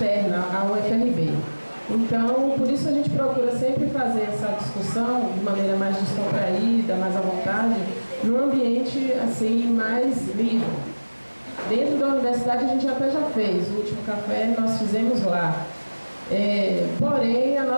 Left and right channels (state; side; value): inverted; both; correlation -1.00